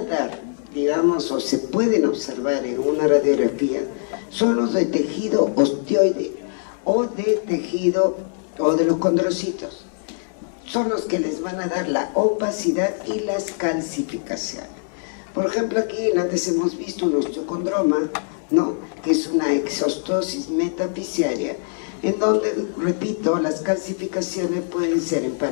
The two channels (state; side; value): silent; right; digital silence